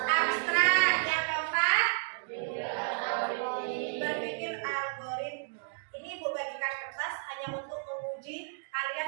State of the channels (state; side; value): silent; left; digital silence